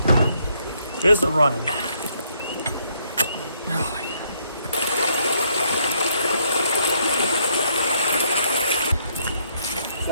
It's a running.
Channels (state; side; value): inverted; both; correlation -0.70